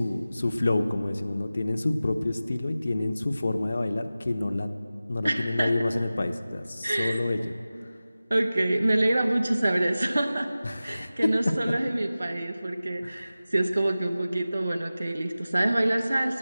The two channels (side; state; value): both; inverted; correlation -0.96